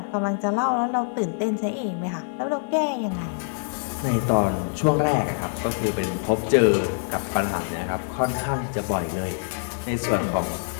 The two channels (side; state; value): right; silent; 56 dB below the other